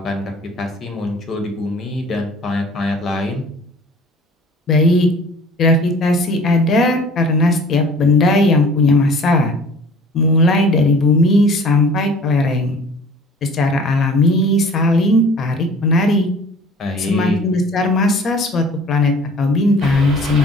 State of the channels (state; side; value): normal; both; correlation 0.48